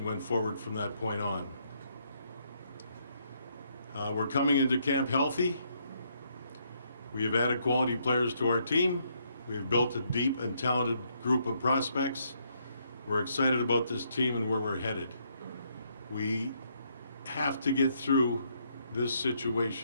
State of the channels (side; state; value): both; inverted; correlation -0.73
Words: went forward from that point on. We're coming into camp healthy. We have added quality players to our team. We have built a deep and talented group of prospects. We're excited about this team and where we're headed. We have to get through this